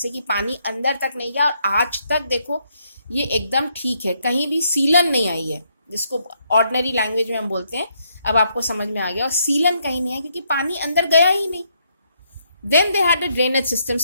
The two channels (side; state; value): both; inverted; correlation -0.74